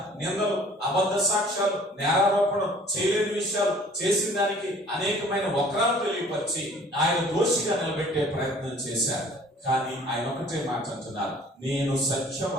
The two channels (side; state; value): both; normal; correlation 0.52